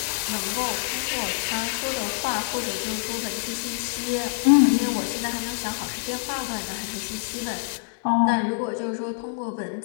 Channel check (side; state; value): right; silent; digital silence